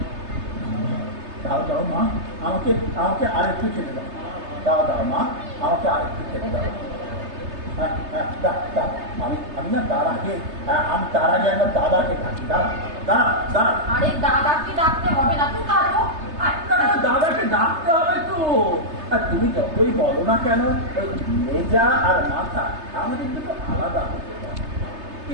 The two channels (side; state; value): left; late; 3.3 ms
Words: দাও মা, আমাকে আরেকটু খেতে দাও। দাও মা, আমাকে আরেকটু খেতে দাও। আমি না তার আগে আমার দাদাকে ডাকি। দাঁড়া। আরে দাদাকে ডাকতে হবে না, তুই কাটো। দাদাকে ডাকতে হবে তো। তুমি যতই বলো না কেন, মেজা আর মাথা আমাদের দুটো আলাদা হতে পারে,